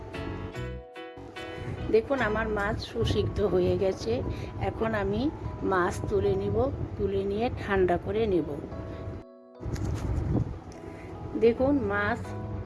দেখুন আমার মাছ সুসিদ্ধ হয়ে গেছে। এখন আমি মাছ তুলে নিব, তুলে নিয়ে ঠান্ডা করে নেব। দেখুন মাছ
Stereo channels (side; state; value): both; identical; correlation 1.00